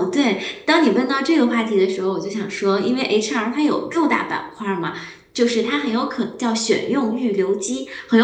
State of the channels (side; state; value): both; identical; correlation 1.00